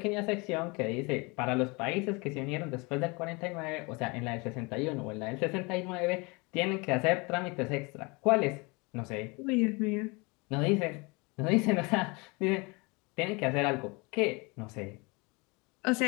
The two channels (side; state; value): right; quieter; 27.7 dB